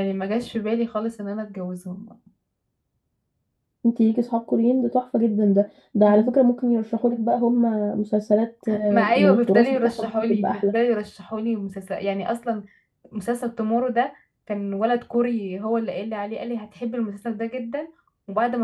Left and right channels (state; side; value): identical; both; correlation 1.00